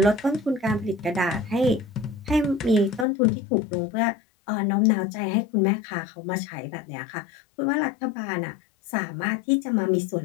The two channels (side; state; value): right; drops out; at 3.1 s